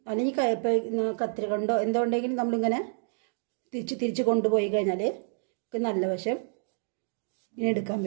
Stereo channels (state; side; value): silent; left; 59 dB below the other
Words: അല്ലെങ്കിൽ കത്തിരി കൊണ്ടോ എന്തോ ഉണ്ടെങ്കിലും നമ്മളിങ്ങനെ തിരിച്ച് കൊണ്ടുപോയി കഴിഞ്ഞാൽ നല്ല വശം ഇങ്ങനെ എടുക്കാൻ